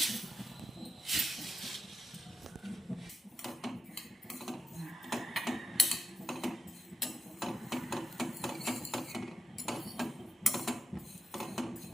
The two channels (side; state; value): both; normal; correlation 0.87